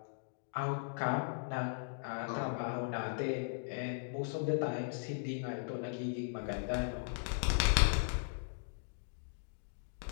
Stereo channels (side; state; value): right; silent; digital silence